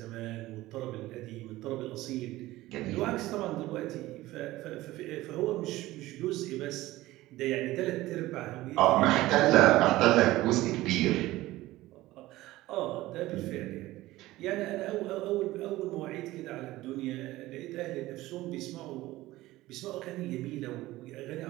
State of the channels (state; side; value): quieter; left; 17.4 dB